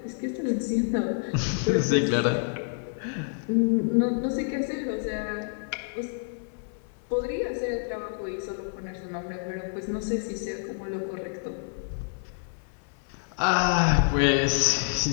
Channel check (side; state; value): right; silent; 59 dB below the other